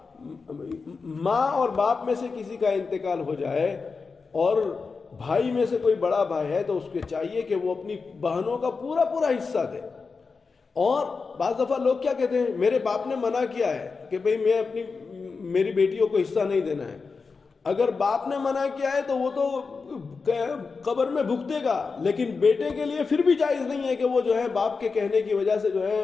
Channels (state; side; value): quieter; right; 4.7 dB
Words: ماں اور باپ میں سے کسی کا انتقال ہو جائے اور بھائی میں سے کوئی بڑا بھائی ہے تو اس کو چاہیے کہ وہ اپنی بہنوں کا پورا حصہ دے. اور بعض دفعہ لوگ کیا کہتے ہیں، میرے باپ نے منع کیا ہے کہ بھئی میری بیٹیوں کو حصہ نہیں دینا ہے. اگر باپ نے منع کیا ہے تو وہ تو قبر میں بھگتے گا، لیکن بیٹے کے لیے پھر بھی جائز نہیں ہے کہ وہ جو ہے باپ کے کہنے کی وجہ سے جو ہے